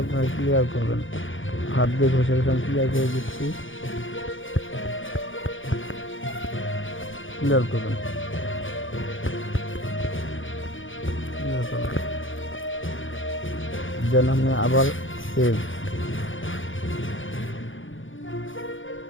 আপনার ক্লিয়ার করবেন, হাত দিয়ে ঘষে ঘষে ক্লিয়ার করে দিচ্ছি, ক্লিয়ার করবেন। যেন আপনি আবার সেভ,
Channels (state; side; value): late; right; 0.57 ms